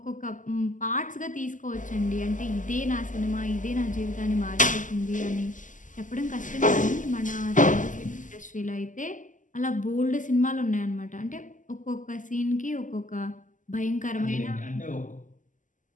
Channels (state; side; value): late; right; 0.37 ms